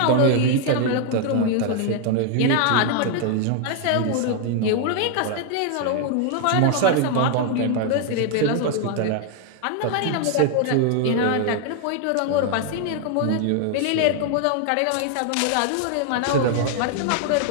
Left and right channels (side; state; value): both; different; correlation 0.00